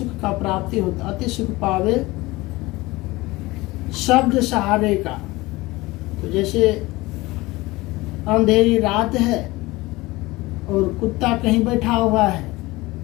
का प्राप्ति होता, अति सुख पावे शब्द सहारे का। तो जैसे अंधेरी रात है और कुत्ता कहीं बैठा हुआ है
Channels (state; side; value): quieter; right; 20.7 dB